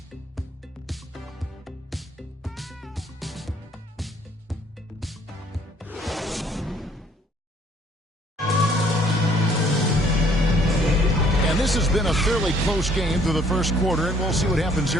This has been a fairly close game through the first quarter, and we'll see what happens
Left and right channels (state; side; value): normal; both; correlation 0.61